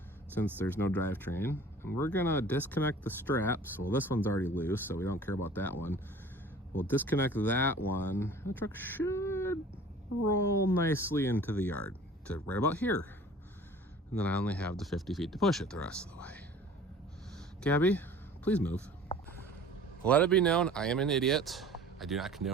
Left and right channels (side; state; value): both; normal; correlation 0.46